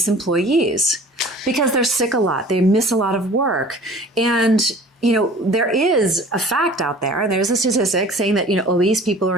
employees because they're sick a lot. They miss a lot of work. And there is a fact out there, and there's a statistic saying that, obese people are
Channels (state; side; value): normal; both; correlation 0.45